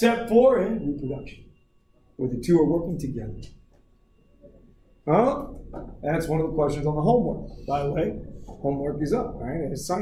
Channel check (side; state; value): both; identical; correlation 1.00